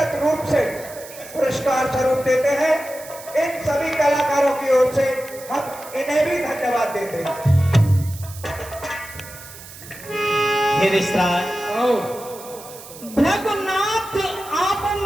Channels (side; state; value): right; noise; hiss, 16 dB below the sound